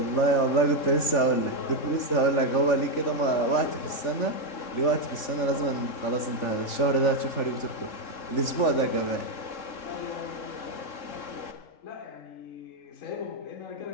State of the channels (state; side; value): late; right; 3.4 ms